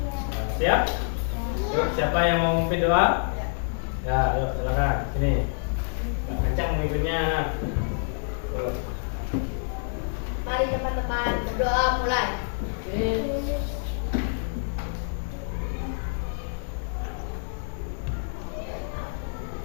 Nah, siap? Yuk, siapa yang mau memimpin doa? Ya, ayo silakan sini. Kak Ancang memimpinnya. Yuk. Mari teman-teman berdoa mulai.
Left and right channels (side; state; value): right; silent; 60 dB below the other